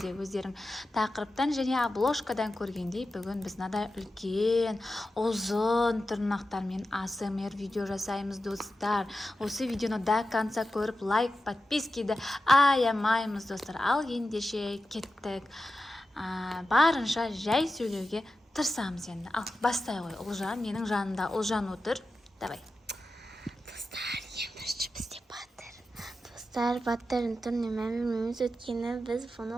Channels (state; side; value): normal; both; correlation 0.92